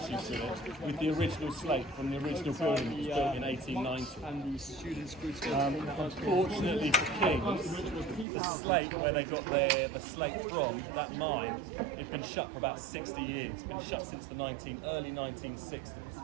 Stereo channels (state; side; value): drops out; left; at 8.2 s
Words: with it, with the original slate from the original building that was built in 1890. And the students unfortunately for Kings, the slate where they got the slate from, that mine, it's been shut for about 60 years. It's been shut since the early 1960s.